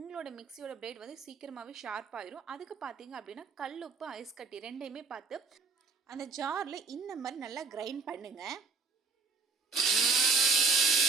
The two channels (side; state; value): left; quieter; 4.4 dB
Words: மிக்சியோட பிளேட் வந்து சீக்கிரமாகவே ஷார்ப் ஆயிரும். அதுக்கு பார்த்தீங்க அப்படின்னா கல் உப்பு, ஐஸ் கட்டி ரெண்டையுமே பார்த்து அந்த ஜாரில் இந்த மாதிரி நல்லா கிரைண்ட் பண்ணுங்கள்.